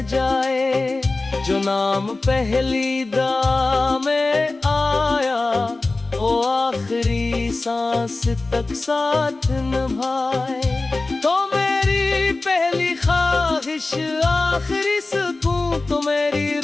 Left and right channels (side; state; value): right; quieter; 3.3 dB